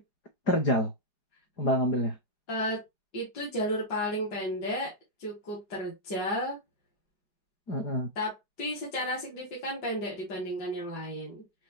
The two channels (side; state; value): right; late; 4.9 ms